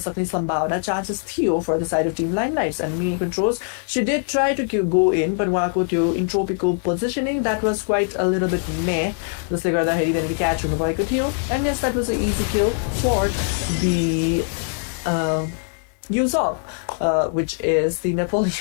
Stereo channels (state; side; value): silent; right; 61 dB below the other